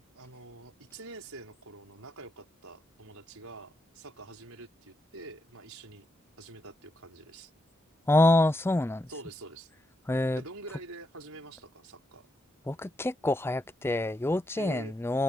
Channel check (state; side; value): normal; both; correlation 0.83